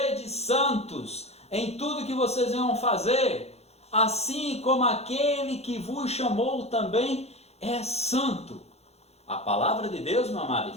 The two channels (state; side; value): late; right; 0.31 ms